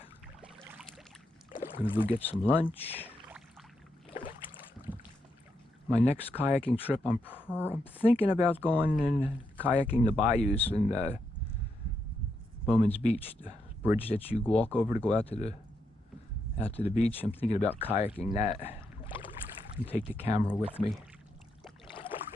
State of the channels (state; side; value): normal; both; correlation 0.81